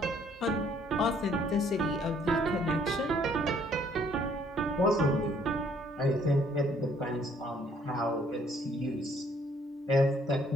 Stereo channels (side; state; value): both; normal; correlation 0.63